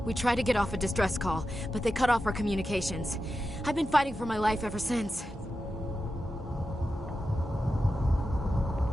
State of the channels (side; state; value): both; normal; correlation 0.91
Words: We tried to get off a distress call, but they cut off our communications. I've been fighting for my life ever since.